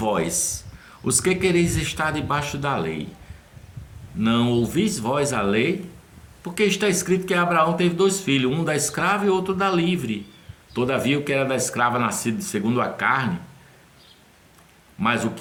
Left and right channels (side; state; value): both; identical; correlation 1.00